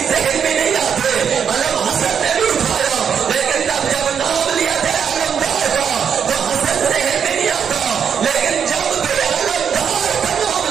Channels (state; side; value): quieter; left; 7.5 dB